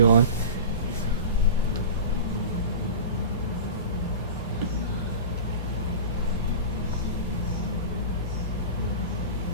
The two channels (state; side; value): inverted; both; correlation -0.31